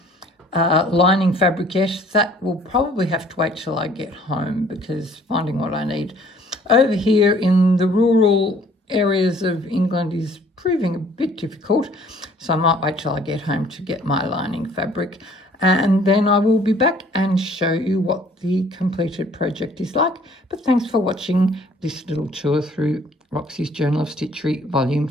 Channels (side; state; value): both; normal; correlation 0.57